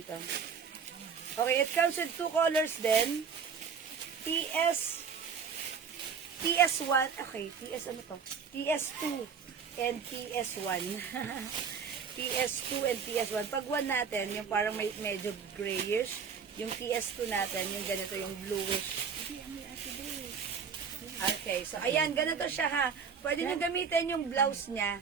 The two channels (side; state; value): left; quieter; 6.3 dB